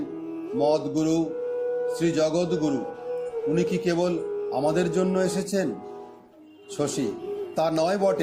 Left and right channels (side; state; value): both; identical; correlation 1.00